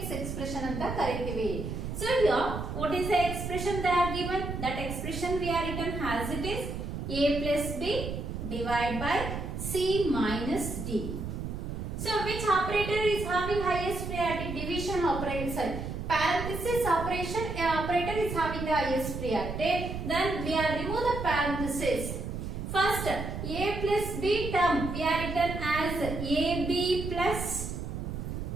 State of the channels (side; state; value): right; noise; rumble, 5 dB below the sound